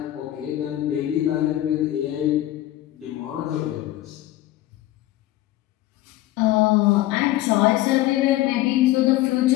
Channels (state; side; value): quieter; right; 15.3 dB